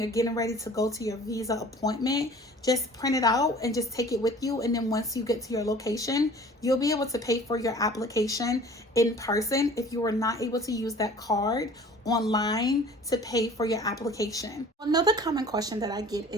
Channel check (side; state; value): both; normal; correlation 0.47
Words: getting ready to go to your visa appointment, just print it out and just take it with you. And then once you get to your location, you'll be able to pay for your application in person if you were not able to use that card online to pay for your application. Another common question that I get